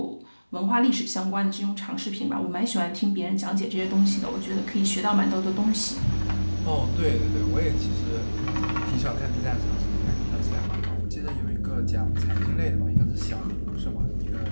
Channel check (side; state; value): both; inverted; correlation -1.00